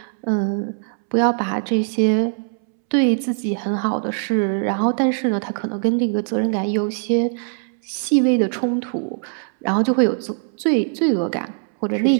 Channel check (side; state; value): left; silent; 65 dB below the other